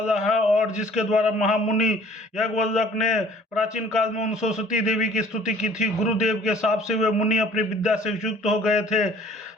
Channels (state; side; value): normal; both; correlation 0.53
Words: है और जिसके द्वारा महामुनि यज्ञवल्लभ ने प्राचीन काल में उन सरस्वती देवी की स्तुति की थी। गुरुदेव के शाप से वे मुनि अपनी विद्या से युक्त हो गए थे।